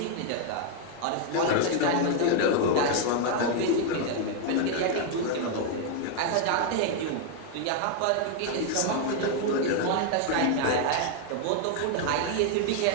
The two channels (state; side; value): different; both; correlation 0.00